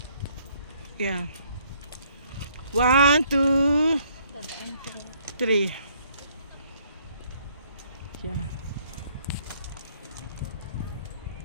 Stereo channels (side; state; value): both; inverted; correlation -0.65